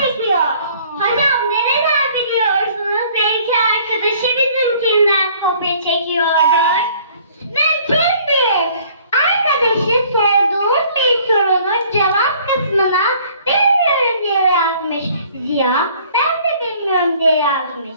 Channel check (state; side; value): inverted; both; correlation -0.56